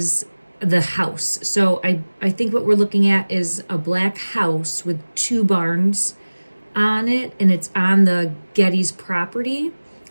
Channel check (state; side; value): inverted; both; correlation -1.00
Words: the house. So I think what we're looking at is a black house with two barns on it, and it's on the Getty's property